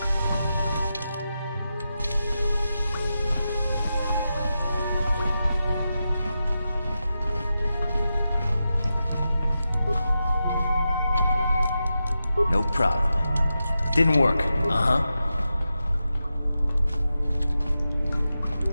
No problem. Didn't work. Uh-huh.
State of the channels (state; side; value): inverted; both; correlation -0.89